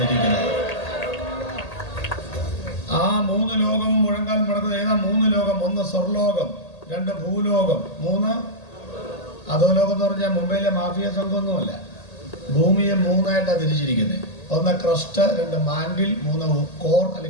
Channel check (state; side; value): late; right; 1.8 ms